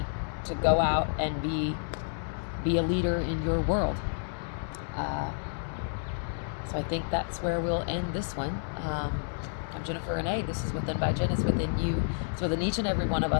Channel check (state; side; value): silent; right; 58 dB below the other